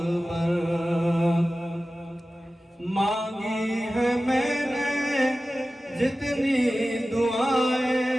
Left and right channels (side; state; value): both; normal; correlation 0.95